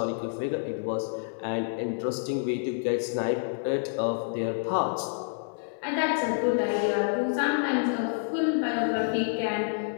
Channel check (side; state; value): right; silent; digital silence